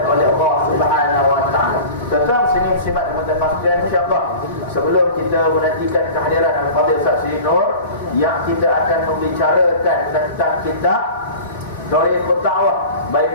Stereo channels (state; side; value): inverted; both; correlation -0.38